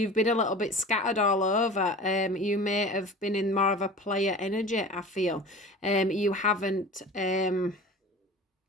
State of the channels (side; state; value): both; normal; correlation 0.38